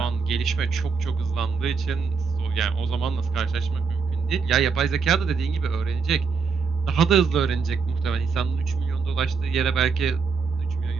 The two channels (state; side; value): quieter; left; 5.3 dB